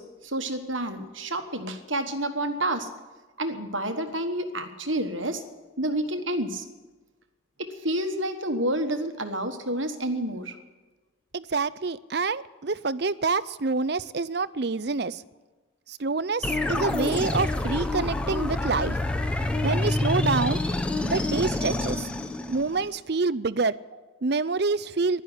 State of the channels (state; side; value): normal; both; correlation 0.16